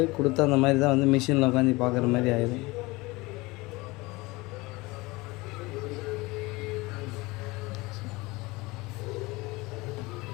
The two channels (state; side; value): quieter; right; 22.7 dB